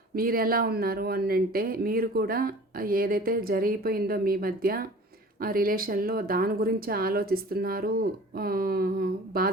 మీరు ఎలా ఉన్నారు అని అంటే, మీరు కూడా ఏదైతే జరిగిపోయిందో మీ మధ్య ఆ రిలేషన్లో దాని గురించి ఆలోచిస్తున్నారు,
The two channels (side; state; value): both; normal; correlation 0.44